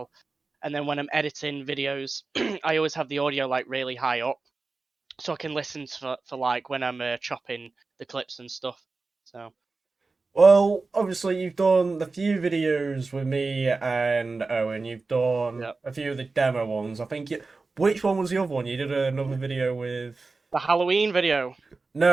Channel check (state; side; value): quieter; left; 3.9 dB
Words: And then when I'm editing videos, I always have the audio like really high up, so I can listen for like when I'm chopping the clips and stuff. So Well, obviously you've done the few videos with me and Owen. You've done Yep. a few of the demo ones. I think which one was the other one? You did another video with. the Halloween video.